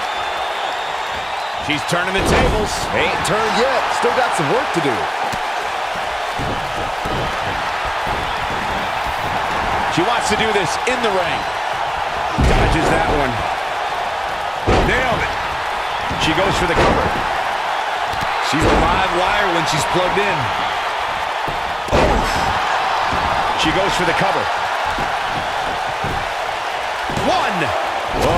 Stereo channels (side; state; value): both; identical; correlation 1.00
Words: She's turning the tables. Ain't turned yet. Still got some work to do. She wants to do this in the ring. Dodges that one. Nailed it. She goes for the cover. She's a live wire when she's plugged in. She goes for the cover. One.